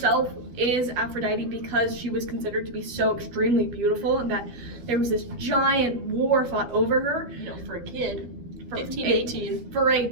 is Aphrodite because she was considered to be so extremely beautiful and that there was this giant war fought over her. You know, for a kid, For 15, a- 18. For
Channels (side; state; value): left; late; 12 ms